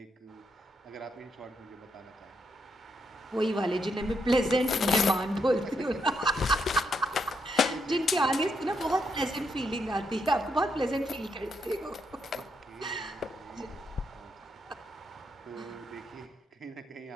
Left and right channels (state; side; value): normal; both; correlation 0.79